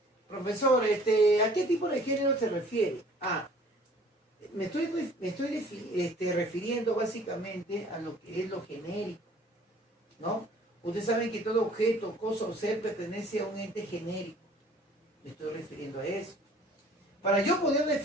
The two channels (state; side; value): normal; both; correlation 0.53